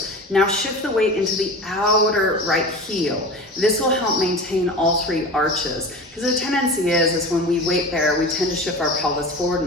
Now shift the weight into the outer right heel. This will help maintain all three arches. Because the tendency is when we weight bear, we tend to shift our pelvis forward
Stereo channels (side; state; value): both; normal; correlation 0.32